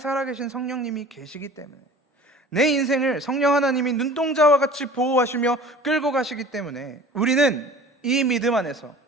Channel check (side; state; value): both; normal; correlation 0.43